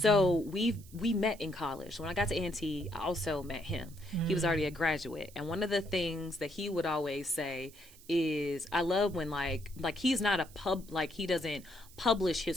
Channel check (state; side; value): noise; right; hiss, 22 dB below the sound